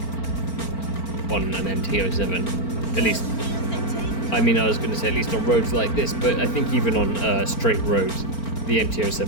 on an MT-07, at least. I mean, I was going to say at least on roads like this, but I think even on straight roads, the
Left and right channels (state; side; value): late; right; 4.4 ms